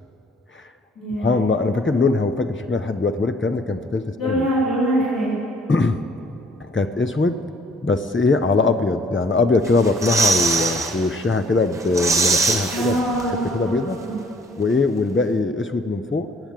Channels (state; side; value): normal; both; correlation 0.59